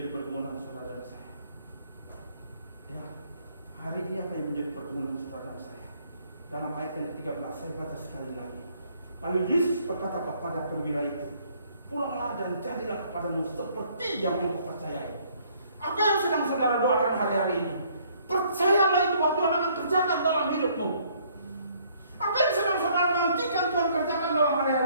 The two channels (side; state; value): both; inverted; correlation -0.63